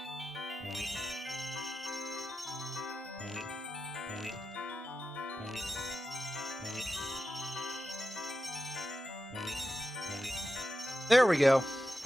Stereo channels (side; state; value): both; normal; correlation 0.91